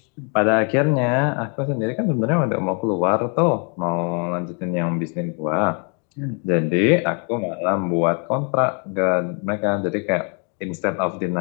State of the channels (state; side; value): quieter; right; 39.3 dB